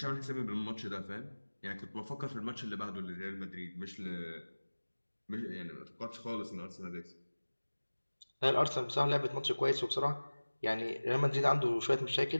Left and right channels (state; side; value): inverted; both; correlation -1.00